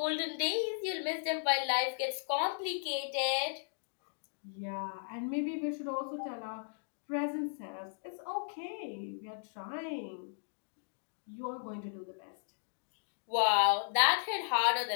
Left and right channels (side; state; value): right; silent; digital silence